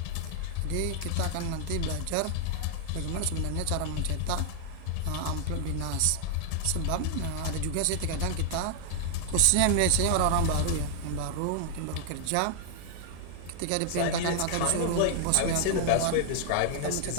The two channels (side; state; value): both; different; correlation -0.01